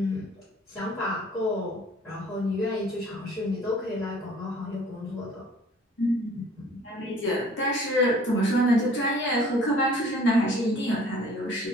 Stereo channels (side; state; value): both; normal; correlation 0.52